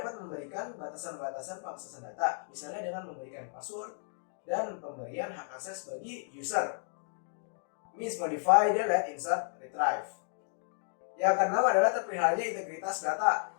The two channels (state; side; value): silent; right; 56 dB below the other